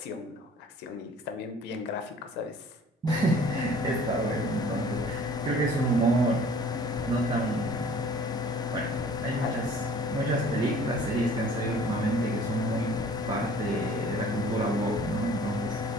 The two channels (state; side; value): normal; both; correlation 0.51